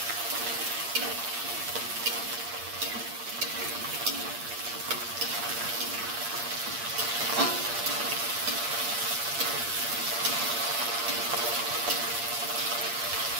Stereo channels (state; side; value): late; left; 8.6 ms